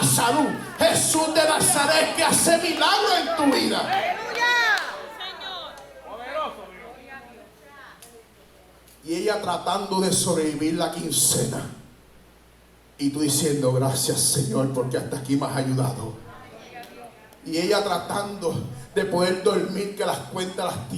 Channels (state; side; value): identical; both; correlation 1.00